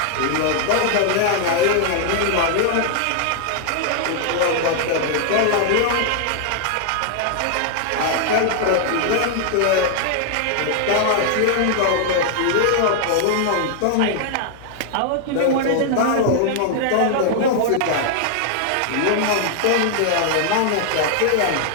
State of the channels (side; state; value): both; different; correlation 0.00